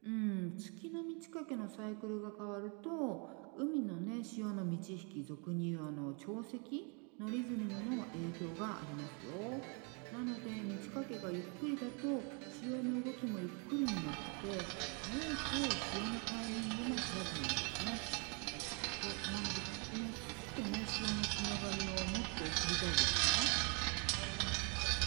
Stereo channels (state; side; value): quieter; left; 35.9 dB